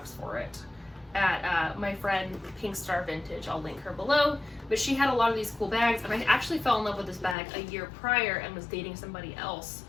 for it at my friend Pink Star Vintage. I'll link her below. But she had a lot of these cool bags, and I actually fell in love with this bag a year prior and was dating somebody else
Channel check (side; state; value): right; drops out; at 7.4 s